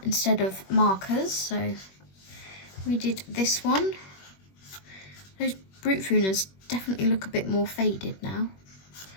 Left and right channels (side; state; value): right; late; 21 ms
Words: instead of markers, so we did this one. Those Brute Funas definitely look a bit more faded now,